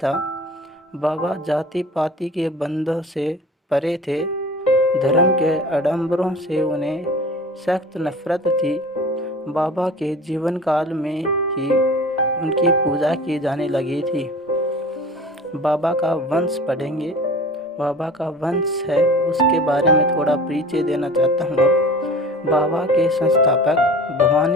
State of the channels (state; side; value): normal; both; correlation 0.40